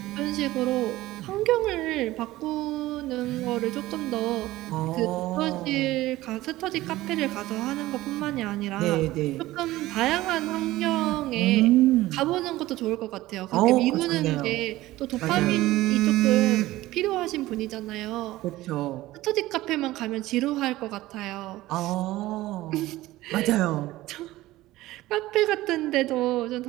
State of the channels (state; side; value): quieter; left; 17.0 dB